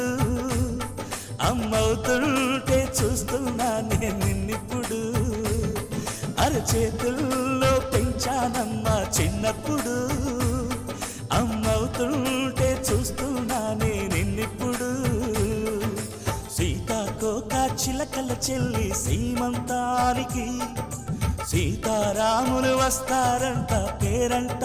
అమ్మవుతుంటే చూస్తున్నా నేను నిన్నిప్పుడు. అరచేతుల్లో పెంచానమ్మా చిన్నప్పుడు, అమ్మవుతుంటే చూస్తున్నా నేను నిన్నిప్పుడు. సీతాకోక చిలకల చెల్లి సీమంతానికి, సీతారాములు వస్తారంట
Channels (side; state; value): both; identical; correlation 1.00